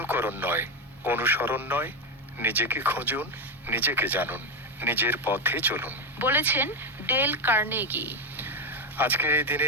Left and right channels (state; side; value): normal; both; correlation 0.10